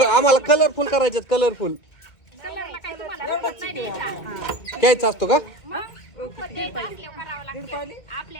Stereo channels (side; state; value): right; late; 2.2 ms